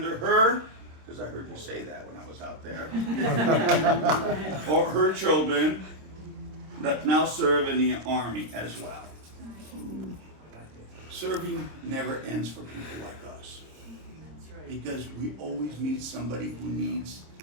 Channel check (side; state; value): left; late; 26 ms